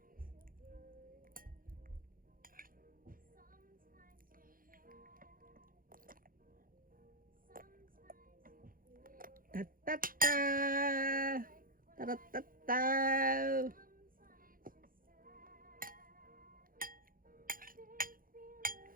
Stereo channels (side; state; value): left; late; 0.41 ms